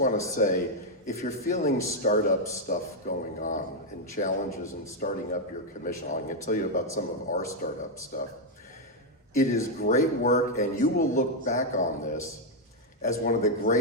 to say, if you're feeling startup stuff going on and challenges in starting up your commission, I'm going to tell you about some of our startup stuff. It is great work, and you will look back on this as one of the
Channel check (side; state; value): both; normal; correlation 0.01